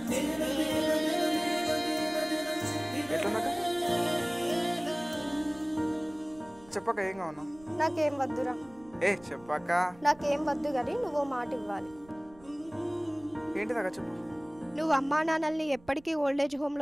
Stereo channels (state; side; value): noise; right; rumble, 25 dB below the sound